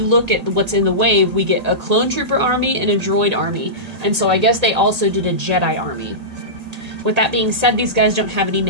look at what's in the wave, we get a clone trooper army and a droid army, and so I guess they also did a Jedi army. With that being said, these guys don't have any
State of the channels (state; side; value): late; left; 1.8 ms